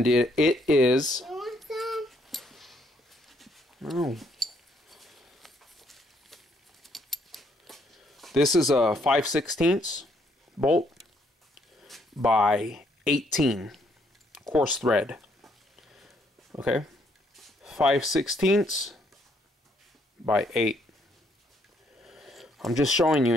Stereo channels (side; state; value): both; normal; correlation 0.70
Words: it is. You want some? No. This is a 5/16 bolt by 18 coarse thread. Okay? 5/16 by 8. I'm just showing you